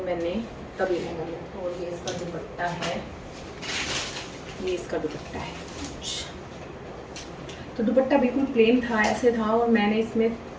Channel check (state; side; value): identical; both; correlation 1.00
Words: मैंने तब ये लहंगा लिया। और ये इसका दुपट्टा है, ये इसका दुपट्टा है। तो दुपट्टा बिल्कुल प्लेन था, ऐसे था, और मैंने इसमें